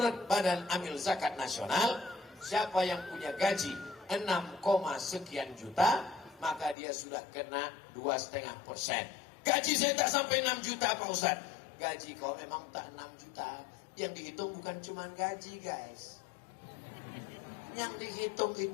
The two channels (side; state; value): right; drops out; at 6.8 s